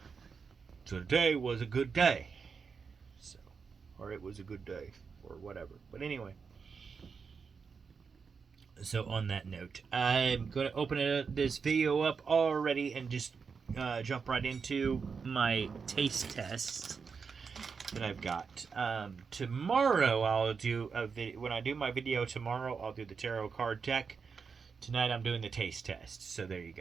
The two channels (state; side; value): quieter; left; 5.6 dB